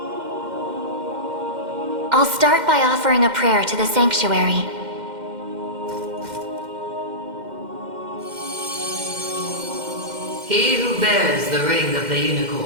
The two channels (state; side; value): late; left; 2.1 ms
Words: I'll start by offering a prayer to the Sanctuary. He who bears the ring of the